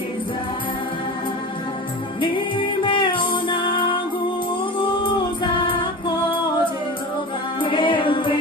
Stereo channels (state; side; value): normal; both; correlation 0.31